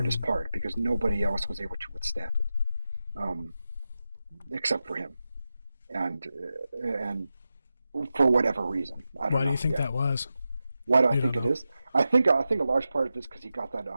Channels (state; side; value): inverted; both; correlation -0.92